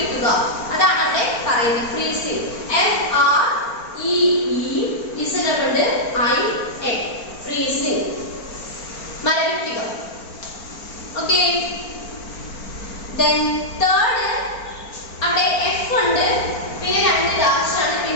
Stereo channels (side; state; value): right; late; 4.4 ms